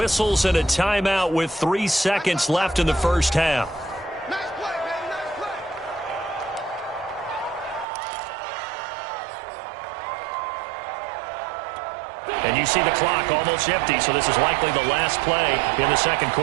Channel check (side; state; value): left; drops out; at 7.9 s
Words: and a timeout with 3 seconds left in the first half. Nice play, man. Nice play. And you see the clock almost empty, so this is likely the last play in the second